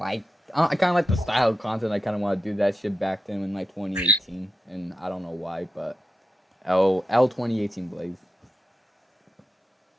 the style of content. I kind of want to do that shit back then in 2018, and I don't know why, but L 2018 Blaze.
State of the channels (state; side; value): normal; both; correlation 0.89